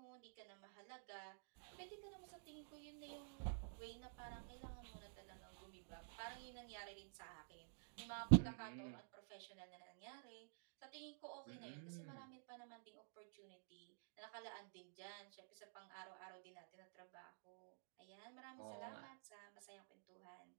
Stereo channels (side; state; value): left; silent; digital silence